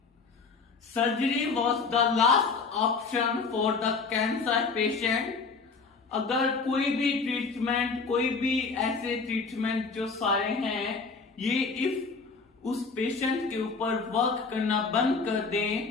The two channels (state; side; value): quieter; right; 4.6 dB